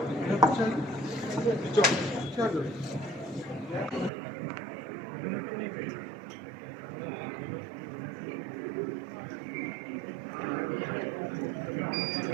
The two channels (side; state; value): left; drops out; at 4.1 s